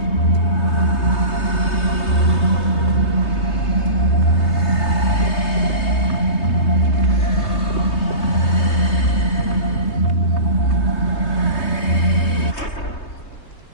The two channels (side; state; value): right; late; 3.2 ms